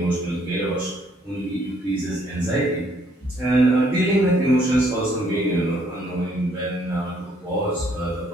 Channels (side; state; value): both; normal; correlation 0.67